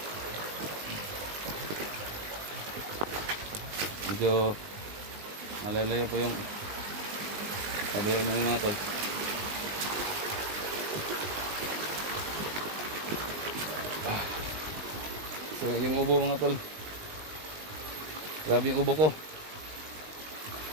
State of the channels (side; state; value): left; late; 19 ms